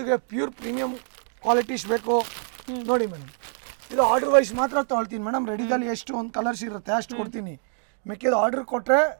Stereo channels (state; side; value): silent; left; 61 dB below the other